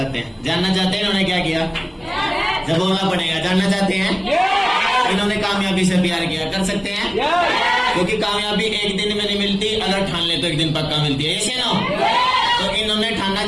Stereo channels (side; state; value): both; identical; correlation 1.00